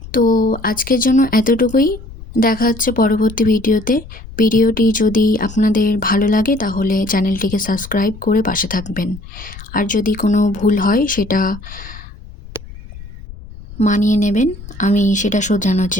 তো আজকের জন্য এতটুকুই। দেখা হচ্ছে পরবর্তী ভিডিওতে। ভিডিওটি যদি আপনাদের ভালো লাগে তাহলে চ্যানেলটিকে সাবস্ক্রাইব করে পাশে থাকবেন। আর যদি কোনো ভুল হয় সেটা মানিয়ে নেবেন, আমি সেটা শোধরানোর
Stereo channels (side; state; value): left; noise; rumble, 16 dB below the sound